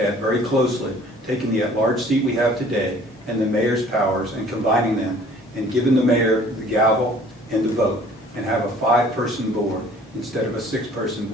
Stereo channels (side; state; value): both; normal; correlation 0.53